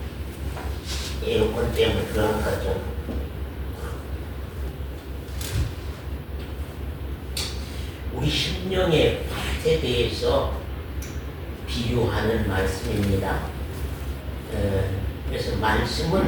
에어컨 때문에 그런 거죠. 우리 심령의 밭에 대해서 비유하는 말씀입니다. 그래서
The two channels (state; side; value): identical; both; correlation 1.00